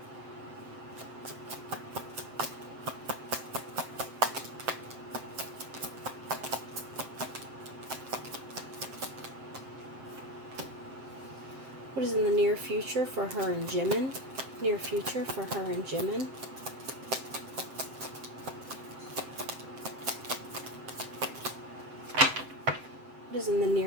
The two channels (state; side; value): late; left; 7.7 ms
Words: What is in the near future for her and Jimin? Near future for her and Jimin. What is in the